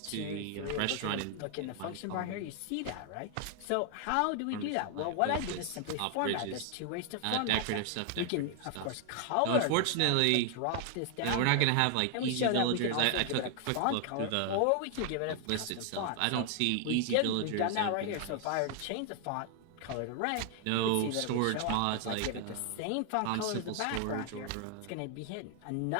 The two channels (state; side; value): different; both; correlation 0.00